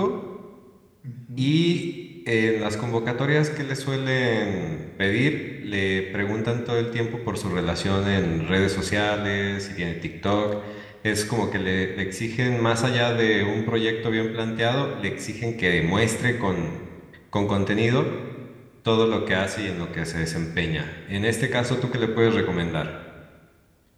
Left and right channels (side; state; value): both; identical; correlation 1.00